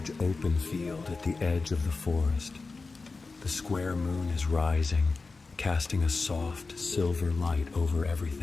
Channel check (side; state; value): right; quieter; 4.0 dB